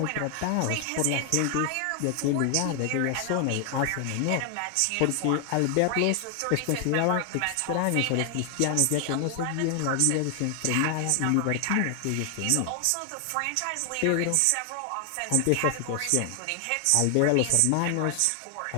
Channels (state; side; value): different; both; correlation 0.00